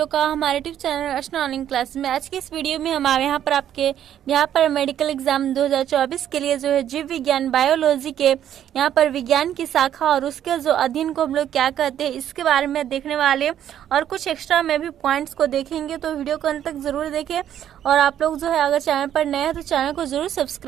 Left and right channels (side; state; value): left; quieter; 10.5 dB